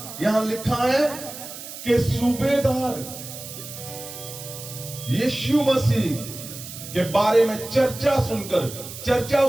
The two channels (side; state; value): right; noise; hiss, 12 dB below the sound